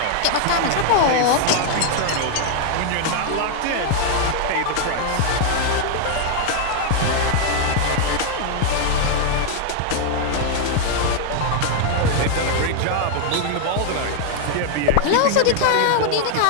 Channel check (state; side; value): different; both; correlation 0.00